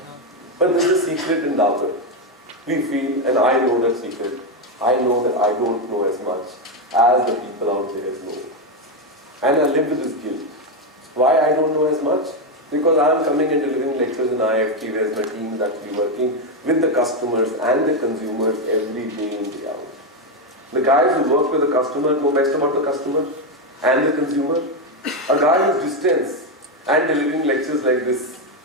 But this is a secret in Dabur. We feel, and I know that secret, I know that I don't know as much as the people out there know. And I live with this guilt. Why I don't know as much? Because I am coming and delivering lectures in IIFT, whereas my team is actually working with the customers and the consumers every day in, day out. The guys who work with the customer know best about the customer and the consumer. A guy who's distance and delivering lectures like this,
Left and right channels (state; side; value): normal; both; correlation 0.07